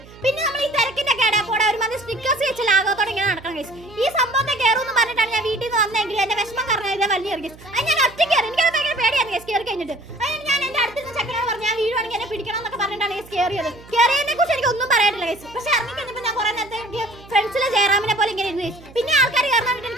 പിന്നെ നമ്മൾ ഈ തിരക്കിന്റെ കേടാപ്പോടെ ഒരുമാതിരി സ്റ്റിക്കേഴ്സ് വെച്ച് ലാഘവത്തോടെ ഇങ്ങനെ നടക്കണം കേസ് ഈ സംഭവത്തെ കയറുമെന്ന് പറഞ്ഞിട്ടാണ് ഞാൻ വീട്ടിൽ നിന്ന് വന്നെങ്കിൽ എന്റെ വിഷമം കാരണം ഇതേ വലിയ കേസ് അത് ഞാൻ ഒറ്റയ്ക്ക് കയറി എനിക്കത് ഭയങ്കര പേടിയാണ് കേസ് കയറി കഴിഞ്ഞിട്ട് അതിന് ഞാൻ എന്റെ അടുത്തുനിന്ന് ചക്കനോട് പറഞ്ഞു ഞാൻ വീഴുവാണെങ്കിൽ എന്നെ പിടിക്കണം എന്നൊക്കെ പറഞ്ഞിട്ടാണ് കേസ് കയറിയത് കയറിയതിനെ കുറിച്ച് എനിക്ക് ഒന്നും പറയാനില്ല കേസ് പക്ഷെ ഇറങ്ങി കഴിഞ്ഞപ്പോൾ ഞാൻ കുറെ നേരത്തെ എനിക്ക് ഫ്രണ്ട്സിലെ ജയറാമിനെ പോലെ ഇങ്ങനെ ഇരുന്നു കേസ് പിന്നെ ആൾക്കാർ കയറാൻ വേണ്ടി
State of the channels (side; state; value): right; noise; hum, 21 dB below the sound